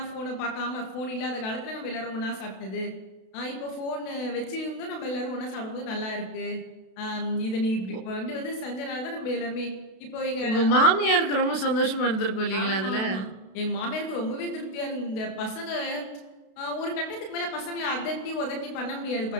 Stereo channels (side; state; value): right; late; 32 ms